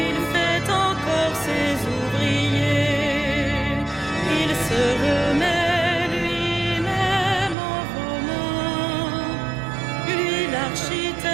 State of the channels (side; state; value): left; drops out; at 7.6 s